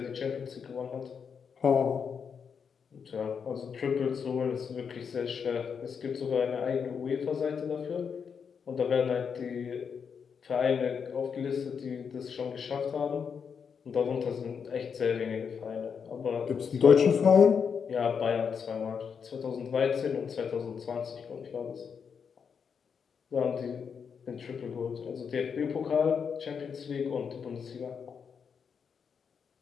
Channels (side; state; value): right; quieter; 6.5 dB